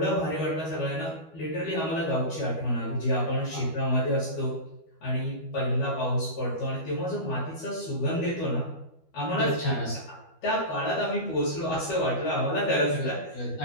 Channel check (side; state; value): right; late; 12 ms